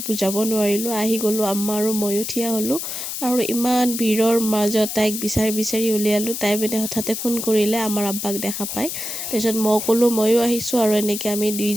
বুজাব নোৱাৰিলোঁ, আহি গ'লোঁ, আম্মা আৰু ময়ো থিয় হ'লোঁ। আৰু ইমান ভিৰৰ মাজত তাইক বিচাৰি উলিয়ালোঁ। তাই মানে হঠাতে ফোন কৰিলে আমাৰ আব্বাক দেখা পাই। তাৰপিছত মই ক'লোঁ ময়ো আহিছোঁ, আৰু এনেকৈ আমি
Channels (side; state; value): left; noise; hiss, 5 dB below the sound